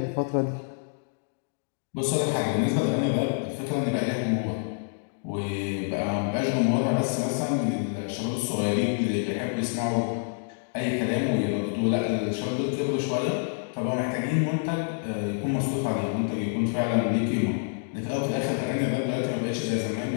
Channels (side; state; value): right; silent; digital silence